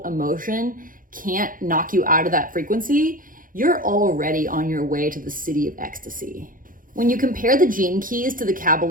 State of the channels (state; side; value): late; left; 0.40 ms